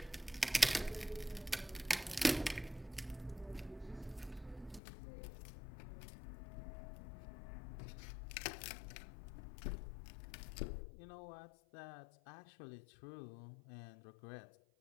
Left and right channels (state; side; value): drops out; right; at 4.8 s